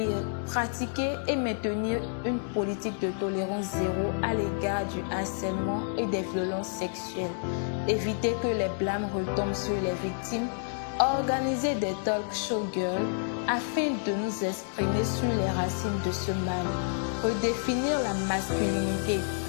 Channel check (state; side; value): silent; right; digital silence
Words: pratiquer et maintenir une politique de tolérance zéro à l'égard du harcèlement et des violences sexuelles, éviter que les blâmes retombent sur les victimes, organiser des talk show girls afin de nous exprimer sur les racines de ce mal, redéfinir la masculinité